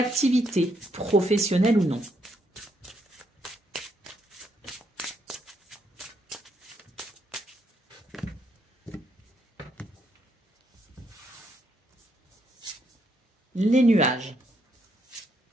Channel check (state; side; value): normal; both; correlation 0.75